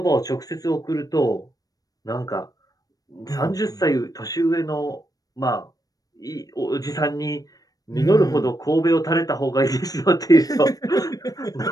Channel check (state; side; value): late; right; 0.18 ms